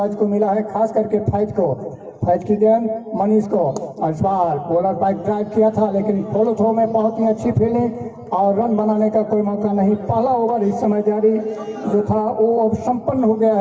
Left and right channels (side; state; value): both; identical; correlation 1.00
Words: को मिला है, खास करके फैज को। फैज की गेंद मनीष को, और इस बार बॉलर बाइक ड्राइव किया था, लेकिन फॉलो थ्रो में बहुत ही अच्छी फील्डिंग और रन बनाने का कोई मौका नहीं। पहला ओवर इस समय जारी जो था वो अब संपन्न हो गया